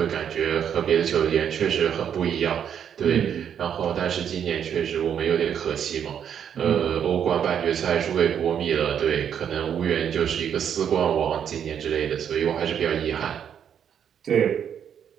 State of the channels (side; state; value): left; quieter; 8.6 dB